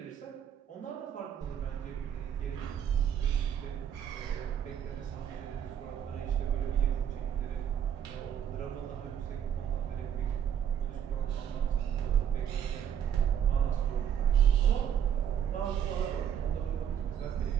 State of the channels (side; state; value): left; quieter; 9.0 dB